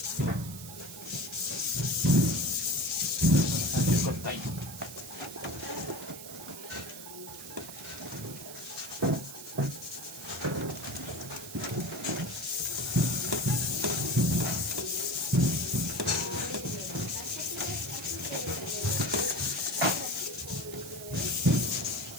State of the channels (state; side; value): noise; right; hiss, 12 dB below the sound